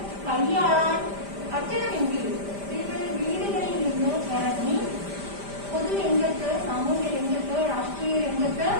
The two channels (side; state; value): left; late; 5.0 ms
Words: കൈയാളാൻ പറ്റണമെങ്കിൽ സ്ത്രീകൾ വീടുകളിൽ നിന്ന് ഇറങ്ങി പൊതുരംഗത്ത്, സാമൂഹ്യ രംഗത്ത്, രാഷ്ട്രീയ രംഗത്ത്